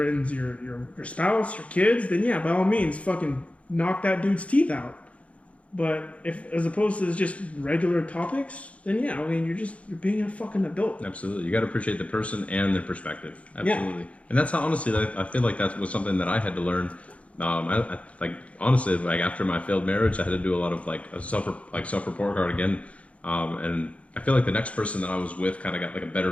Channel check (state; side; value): late; right; 0.064 ms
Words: spouse, your kids, then yeah, by all means, fucking knock that dude's teeth out. But if, as opposed to just regular topics, then yeah, I mean, you're being a fucking adult. Absolutely, you got to appreciate the person and their perspective. Absolutely, yeah. And that's how honestly, I feel like that was something that I had to learn. I honestly, like after my failed marriage, I had to do a lot of a self-report card again, and I feel like the next person that I was with kind of got like a better